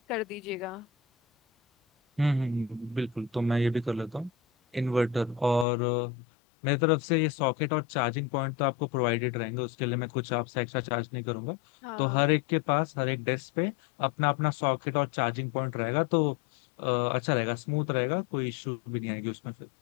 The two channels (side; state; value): right; drops out; at 5.7 s